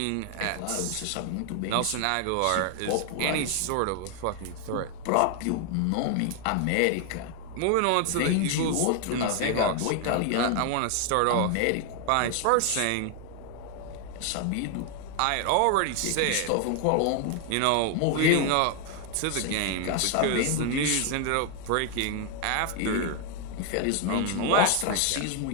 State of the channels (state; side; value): different; both; correlation 0.00